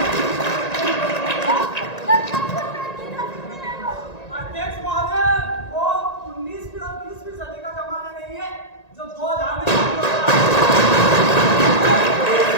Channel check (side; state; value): right; late; 1.9 ms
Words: अध्यक्ष महोदय, वो 19वीं और 20वीं सदी का जमाना नहीं है जो 2000 में